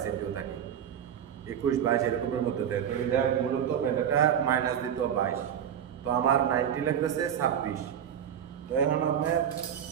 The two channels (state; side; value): quieter; left; 9.0 dB